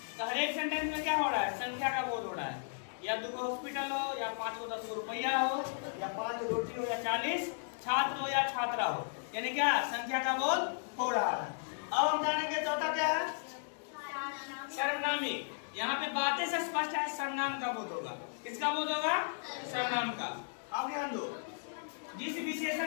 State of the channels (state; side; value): silent; right; digital silence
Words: तो हर एक सेंटेंस में क्या हो रहा है? संख्या का बोध हो रहा है। या 2 हॉस्पिटल हो, या 5 को 10 रुपया हो, या 5 रोटी हो, या 40 छात्र हो या छात्रा हो, यानी क्या? संख्या का बोध हो रहा है। अब हम जानेंगे चौथा क्या है? सर्वनामी। यहाँ पे बातें से स्पष्ट है सर्वनाम का बोध होगा। किसका बोध होगा? सर्वनाम का। अब ध्यान दो, जिस